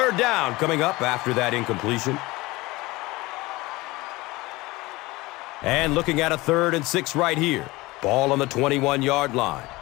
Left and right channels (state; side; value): quieter; right; 21.0 dB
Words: down coming up after that incompletion. And looking at a 3rd and 6 right here. Ball on the 21-yard line.